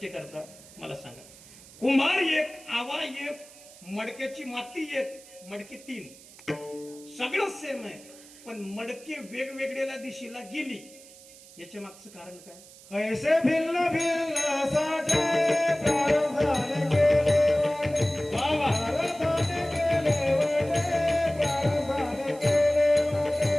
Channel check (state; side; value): noise; right; hiss, 21 dB below the sound